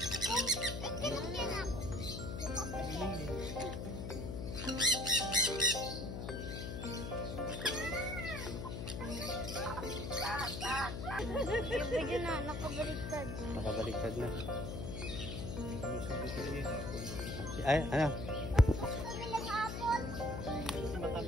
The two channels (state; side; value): noise; left; hum, 5 dB below the sound